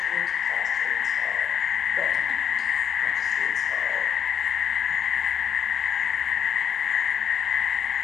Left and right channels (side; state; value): right; quieter; 8.3 dB